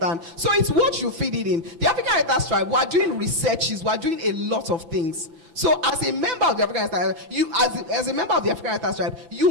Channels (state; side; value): late; left; 6.0 ms